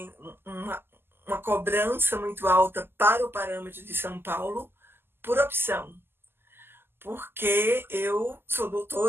uma cobrança muito alta para o parâmetro de São Paulo por opção. Porque eu sou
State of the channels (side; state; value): left; late; 0.11 ms